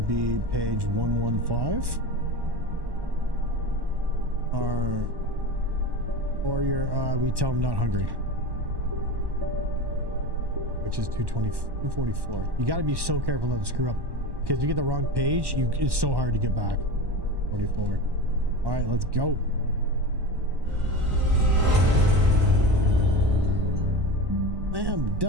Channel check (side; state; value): left; late; 1.1 ms